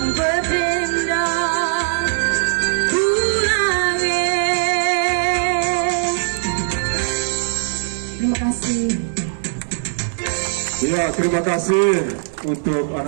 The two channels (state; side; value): silent; left; digital silence